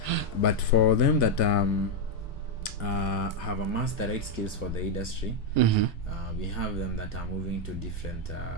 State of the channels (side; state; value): both; normal; correlation 0.02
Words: But for them that have amassed the right skills for the industry, we have them that are moving to different